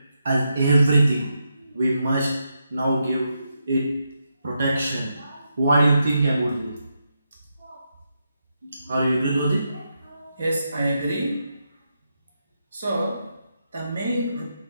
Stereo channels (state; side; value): inverted; both; correlation -0.84